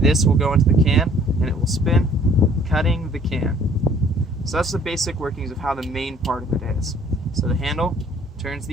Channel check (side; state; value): both; normal; correlation 0.57